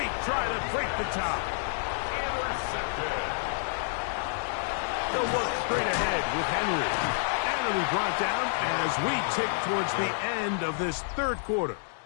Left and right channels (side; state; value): right; silent; digital silence